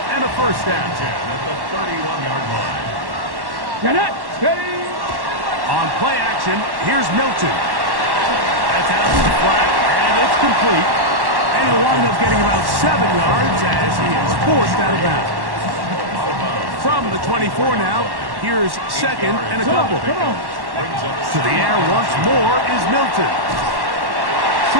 and a first down. At the 31-yard line. Get it. Steady. On play action, here's Milton. That's out to the flat, and it's complete. And he'll wind up getting about 7 yards as he is forced out of bounds. From the 24 now, here's 2nd and a couple. Come on. To the air once more is Milton.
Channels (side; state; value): left; late; 1.1 ms